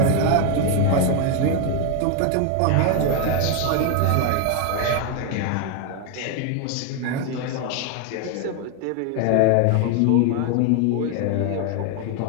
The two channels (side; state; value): both; different; correlation 0.01